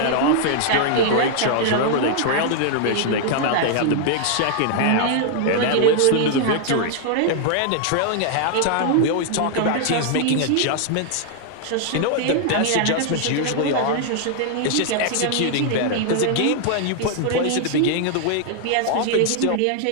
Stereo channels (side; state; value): both; different; correlation 0.00